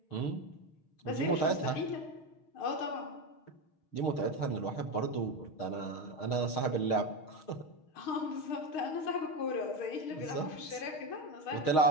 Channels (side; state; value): right; late; 6.4 ms